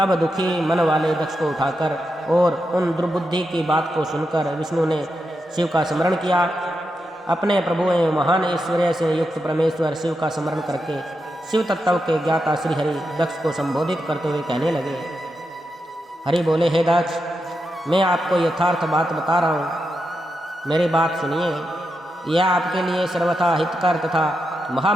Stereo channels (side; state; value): both; normal; correlation 0.86